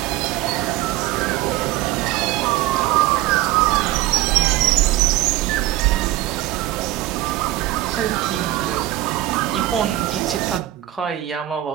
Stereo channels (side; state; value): left; quieter; 15.3 dB